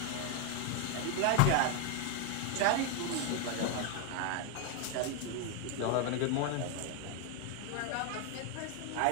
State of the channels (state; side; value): different; both; correlation 0.01